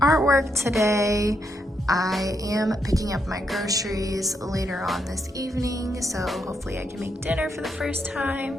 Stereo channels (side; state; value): both; normal; correlation 0.80